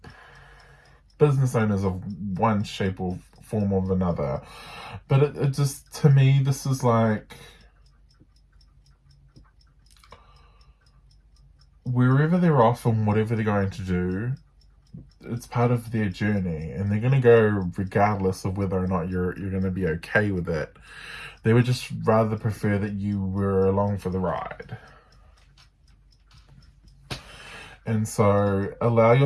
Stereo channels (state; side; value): identical; both; correlation 1.00